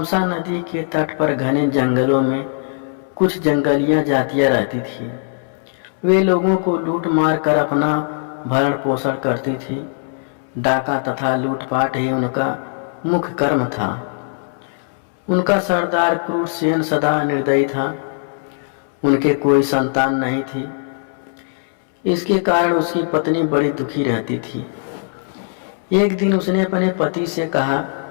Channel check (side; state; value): right; silent; 66 dB below the other